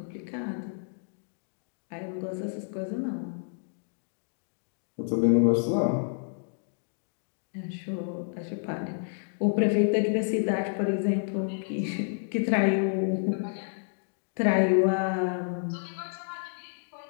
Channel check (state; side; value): silent; right; digital silence